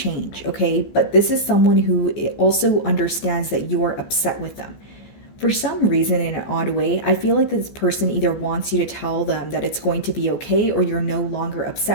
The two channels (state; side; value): late; right; 14 ms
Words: okay? But this is someone who also understands that you're upset with them. For some reason, in an odd way, I feel like this person either wants you to tell them that it's going to be okay, or you're no longer